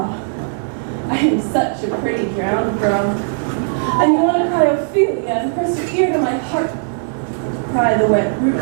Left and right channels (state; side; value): silent; left; digital silence